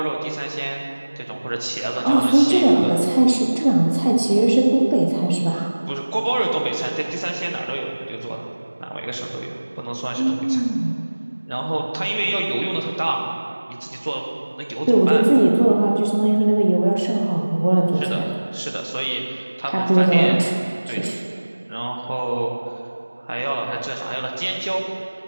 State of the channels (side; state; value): both; inverted; correlation -1.00